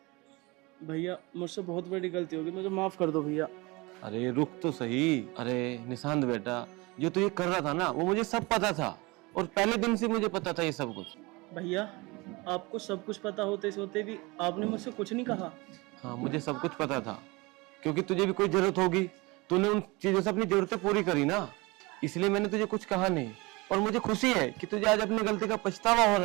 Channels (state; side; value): quieter; left; 24.6 dB